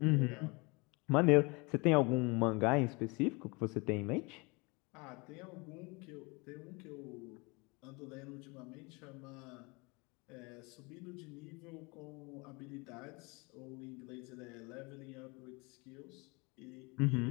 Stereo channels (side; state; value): right; quieter; 27.9 dB